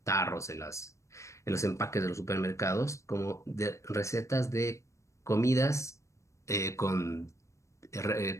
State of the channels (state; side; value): late; right; 0.15 ms